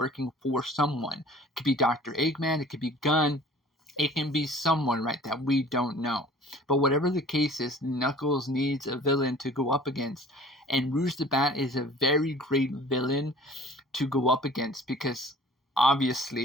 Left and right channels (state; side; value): normal; both; correlation 0.49